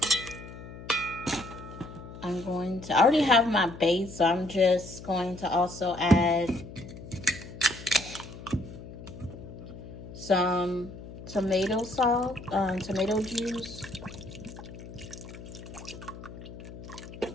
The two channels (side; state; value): left; noise; hum, 13 dB below the sound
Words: I already have my base, so I'm just going to also add some tomato sauce, tomato juice.